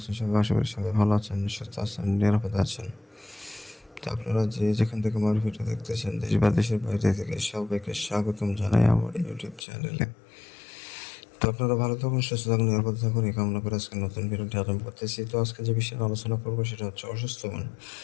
সবাই? আশা করি সবাই ভালো আছেন, সুস্থ আছেন, নিরাপদে আছেন। তো আপনারা যে যেখান থেকে আমার ভিডিও দেখতেছেন, দেশ বা দেশের বাইরে থেকে, সবাইকে স্বাগতম জানাই আমার ইউটিউব চ্যানেলে। তো আপনারা ভালো থাকুন, সুস্থ থাকুন, নিরাপদে থাকুন, এই কামনা করে আজকে নতুন ভিডিওটি আরম্ভ করতেছি। তো আজকে যে বিষয়ে আলোচনা করবো সেটা হচ্ছে অসুস্থ বান।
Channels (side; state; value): right; drops out; at 9.7 s